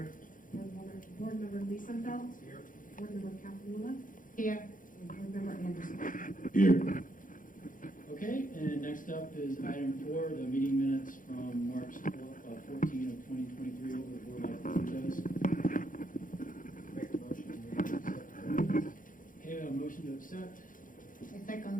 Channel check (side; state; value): right; late; 0.39 ms